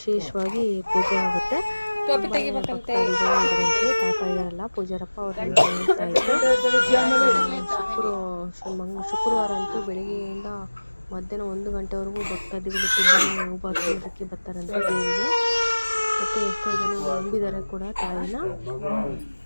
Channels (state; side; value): inverted; both; correlation -1.00